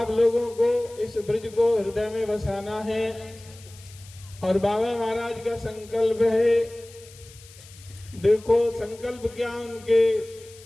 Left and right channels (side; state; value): left; noise; hiss, 22 dB below the sound